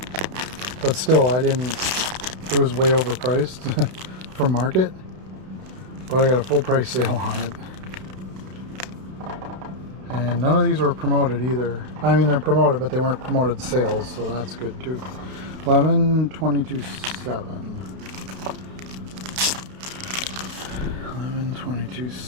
but still, it was way overpriced for market, but I got a full price sale on it. And none of these were promoted either. I mean, they're promoted, but they weren't promoted sales, so that's good too. 11/22/7.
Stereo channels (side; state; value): left; late; 31 ms